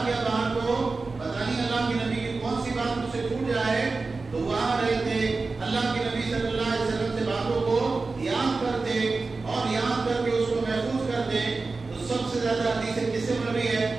گیا باہر کو پتہ نہیں اللہ کے نبی کی کون سی بات مجھ سے چھوٹ جائے. تو وہاں رہے تھے اللہ کے نبی صلی اللہ علیہ وسلم سے باتوں کو یاد کرتے اور یاد کر کے اس کو محفوظ کرتے. تو سب سے زیادہ حدیث کس سے مروی ہے،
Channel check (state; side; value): quieter; left; 3.9 dB